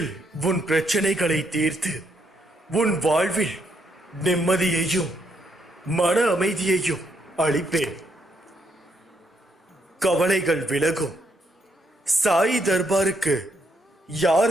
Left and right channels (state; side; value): normal; both; correlation 0.75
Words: உன் பிரச்சனைகளை தீர்த்து உன் வாழ்வில் நிம்மதியையும் மன அமைதியையும் அளிப்பேன். கவலைகள் விலகும். சாய் தர்பாருக்கு